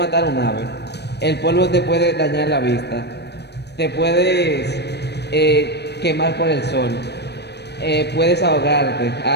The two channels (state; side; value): late; right; 0.49 ms